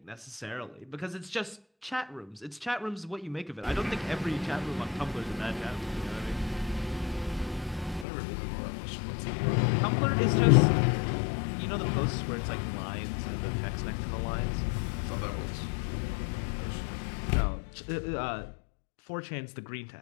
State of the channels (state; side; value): drops out; right; at 8.1 s